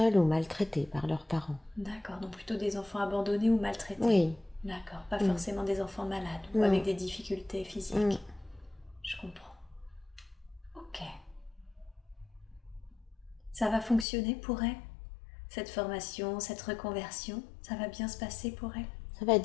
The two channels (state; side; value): drops out; right; at 14.1 s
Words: ou maltraités par leurs parents. D'accord, donc plutôt des enfants abandonnés ou maltraités. Oui. D'accord, pas forcément des enfants malades ou avec des difficultés physiques. Je comprends. Ok. Ça va fonctionner pour elle? Cette formation, cette reconversion, ça va bien se passer pour elle? Ça va